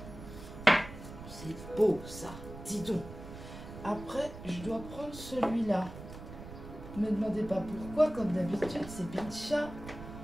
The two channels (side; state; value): right; noise; rumble, 13 dB below the sound